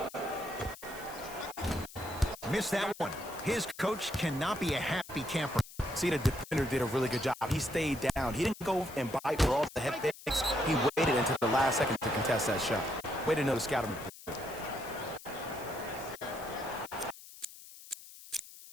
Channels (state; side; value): noise; left; hiss, 17 dB below the sound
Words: Missed that one. His coach cannot be a happy camper. See, the defender did a really good job. He stayed down. He didn't go and bite for all the head fakes. He waited until the last second to contest that shot. Way to know the scouting report.